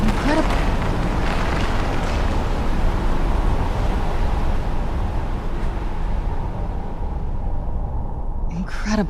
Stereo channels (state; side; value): identical; both; correlation 1.00